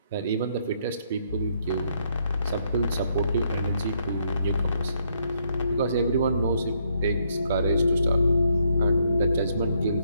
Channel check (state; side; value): inverted; both; correlation -0.73